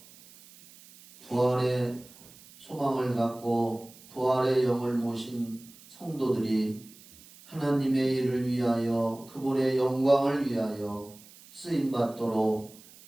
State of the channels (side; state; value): right; noise; hiss, 22 dB below the sound